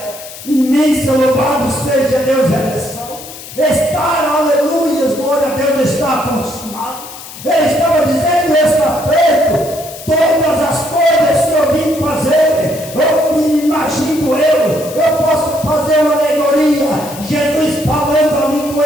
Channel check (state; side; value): noise; left; hiss, 14 dB below the sound